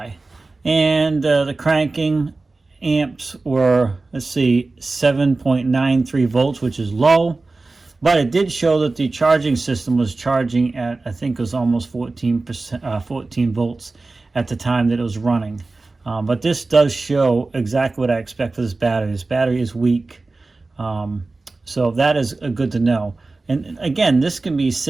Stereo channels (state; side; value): quieter; left; 3.5 dB